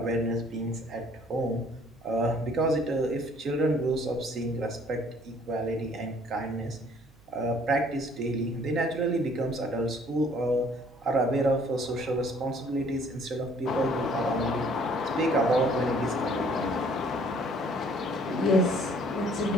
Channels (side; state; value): right; noise; hum, 28 dB below the sound